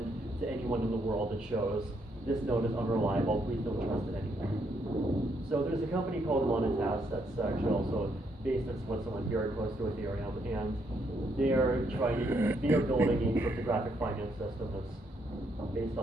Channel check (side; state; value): both; normal; correlation 0.74